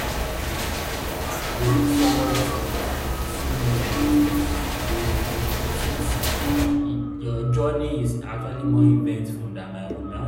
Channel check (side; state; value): both; identical; correlation 1.00